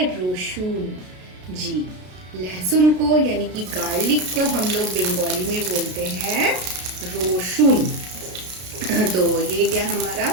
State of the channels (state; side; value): late; left; 33 ms